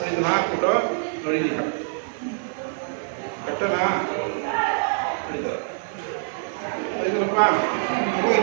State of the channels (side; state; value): left; silent; digital silence